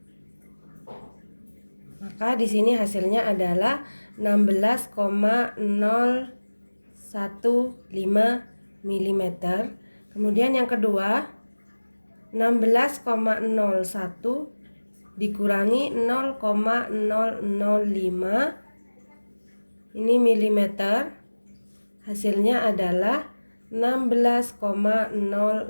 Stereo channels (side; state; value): both; inverted; correlation -1.00